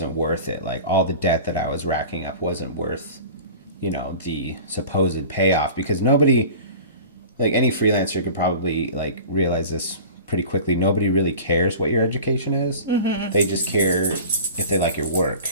worth it. Like, all the debt that I was racking up wasn't worth you know, the supposed payoff, because nobody, like any freelancer could probably like realize this pretty quickly. Nobody really cares what your education is. Mm-hmm. They just care if they like your work.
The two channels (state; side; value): inverted; both; correlation -0.39